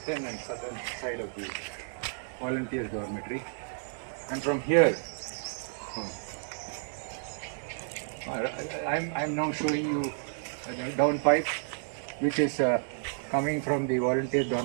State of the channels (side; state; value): left; silent; digital silence